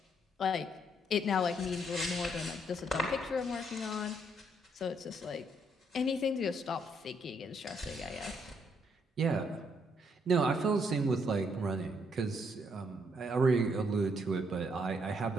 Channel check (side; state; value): both; normal; correlation 0.72